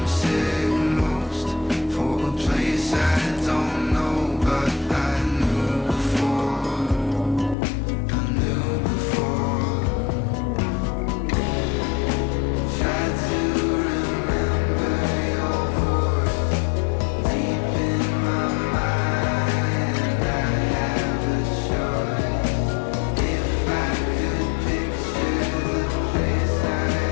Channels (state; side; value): drops out; right; at 7.6 s